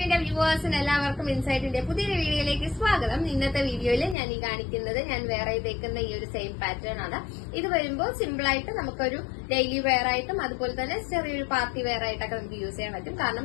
വ്യൂവേഴ്സിന് എല്ലാവർക്കും ഇൻസൈറ്റിന്റെ പുതിയൊരു വീഡിയോയിലേക്ക് സ്വാഗതം. ഇന്നത്തെ വീഡിയോയിൽ ഞാൻ ഈ കാണിക്കുന്നത് ഞാൻ വേറെ തേക്കുന്ന ഈ ഒരു സെയിം പാറ്റേൺ ആണ്. ഇത് വരുമ്പോൾ സിമ്പിൾ ആയിട്ട് നമുക്കൊരു ഡെയിലി വെയർ ആയിട്ടും അതുപോലെ തന്നെ ചെറിയൊരു പാർട്ടി വെയർ ആയിട്ടൊക്കെ നമുക്ക് യൂസ് ചെയ്യാൻ പറ്റും. കാരണം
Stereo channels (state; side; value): drops out; right; at 4.2 s